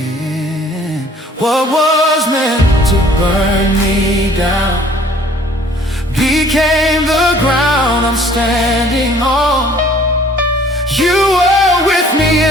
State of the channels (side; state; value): both; normal; correlation 0.55